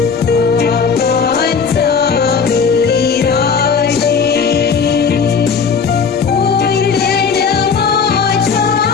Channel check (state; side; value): quieter; right; 5.9 dB